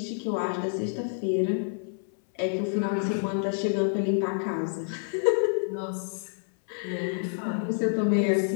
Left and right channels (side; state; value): right; silent; 59 dB below the other